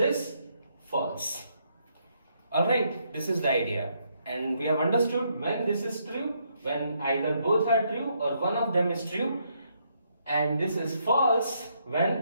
false. Alright, this is the idea, and we have understood when this is true, when either both are true or one of them is true, and this is false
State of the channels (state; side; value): inverted; both; correlation -0.75